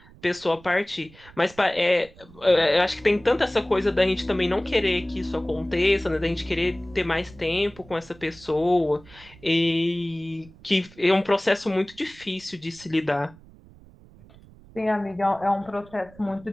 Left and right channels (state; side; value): noise; right; rumble, 23 dB below the sound